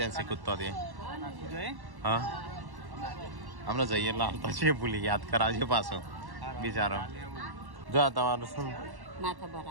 કૂદતો દે હા હમણાં જઈએ એટલે હાલતા છે ભૂલી યાદ કરાવજો પાછો બિચારો. જો આ તમારું શું માથા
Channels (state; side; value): late; left; 1.1 ms